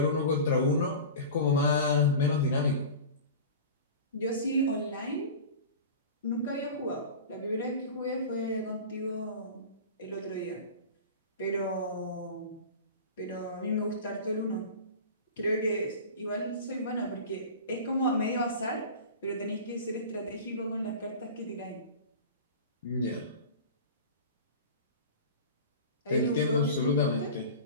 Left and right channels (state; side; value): inverted; both; correlation -0.34